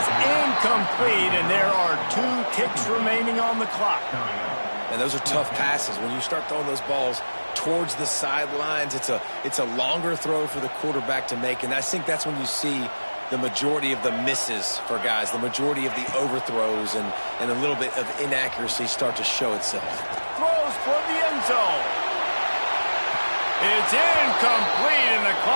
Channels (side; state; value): both; inverted; correlation -1.00